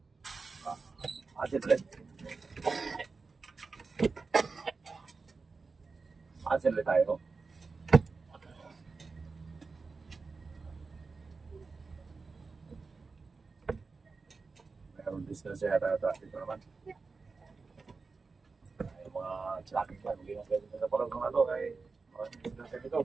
Asin ulit. Asin ulit tayo. Mayroon distance yata dito naman. Mga tracking plan, hindi na pwede sa parang mga ito ay mga disgrasya dito.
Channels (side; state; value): left; quieter; 4.4 dB